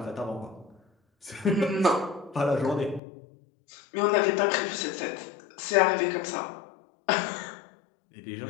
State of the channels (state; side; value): drops out; right; at 3.0 s